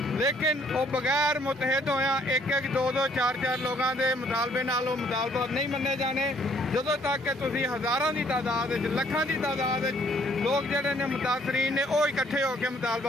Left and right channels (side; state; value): both; normal; correlation 0.64